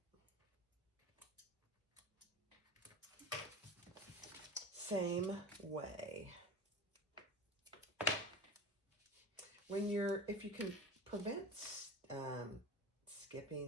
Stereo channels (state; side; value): normal; both; correlation 0.32